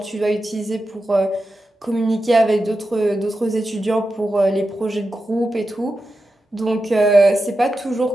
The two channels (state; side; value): normal; both; correlation 0.90